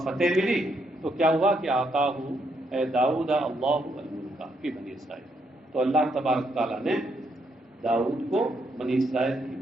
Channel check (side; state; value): both; normal; correlation 0.76